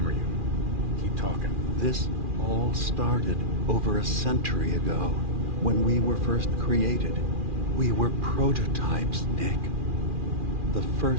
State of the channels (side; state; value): left; late; 2.4 ms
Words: you. Keep talking. This all started over a century ago, when we were first created. We were prototypes, Nick. The